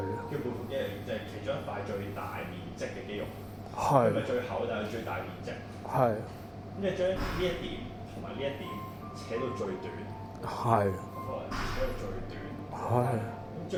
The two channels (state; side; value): identical; both; correlation 1.00